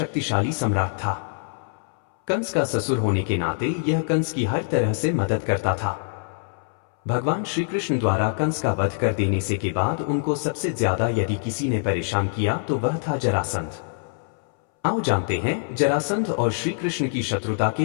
सम्राट था। कंस का ससुर होने के नाते यह कंस की हर तरह से मदद करता था। भगवान श्री कृष्ण द्वारा कंस का वध कर देने से के बाद उनको सबसे ज्यादा यदि किसी ने परेशान किया तो वह था जरासंध। आओ जानते हैं जरासंध और श्री कृष्ण की शत्रुता के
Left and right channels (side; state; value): right; silent; 62 dB below the other